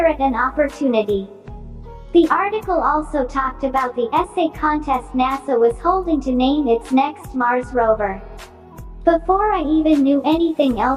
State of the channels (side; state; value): both; identical; correlation 1.00